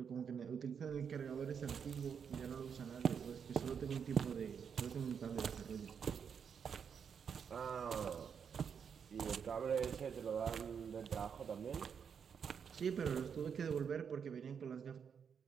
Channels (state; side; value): quieter; left; 7.0 dB